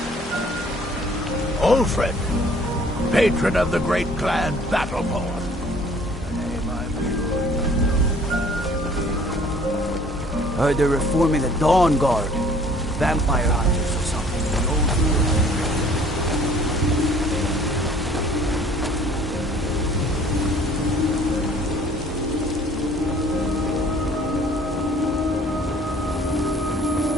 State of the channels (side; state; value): both; normal; correlation 0.54